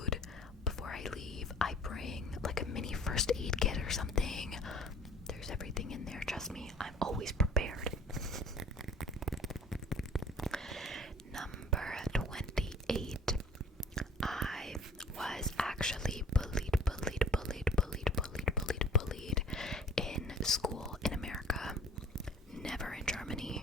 before I leave. I bring like a mini first aid kit or something. There's everything in there. Trust me, I'm always prepared. Number 28. I was actually bullied in school in America. Never in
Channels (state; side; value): normal; both; correlation 0.48